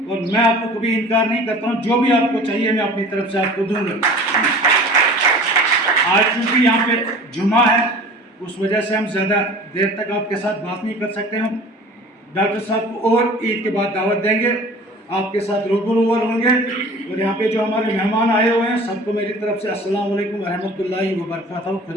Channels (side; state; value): both; normal; correlation 0.43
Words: और मैं आपको कभी इनकार नहीं करता हूँ, जो भी आपको चाहिए मैं अपनी तरफ से आपको दूंगा। आज चूँकि यहाँ पे जुमा है उस वजह से हम ज़्यादा देर तक आपके साथ बात नहीं कर सकते। हम डॉक्टर साहब को और ईद के बाद दावत देंगे, आपके साथ रूबरू होंगे। और यहाँ पे जो हमारे मेहमान आए हुए हैं सबको मेरी तरफ से अस्सलाम वालेकुम व रहमतुल्लाहि व बरकातहू।